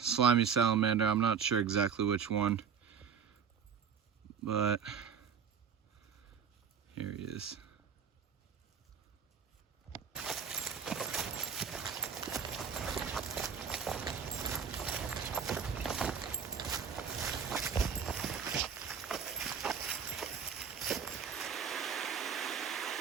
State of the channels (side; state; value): left; quieter; 7.1 dB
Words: salamander. I'm not sure exactly which one, but here he is.